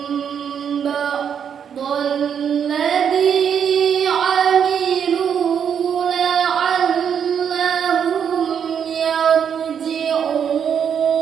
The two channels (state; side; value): quieter; left; 7.9 dB